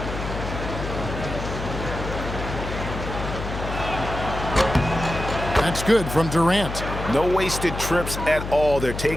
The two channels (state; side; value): noise; left; hum, 6 dB below the sound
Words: That's good from Durant. No wasted trips at all. They're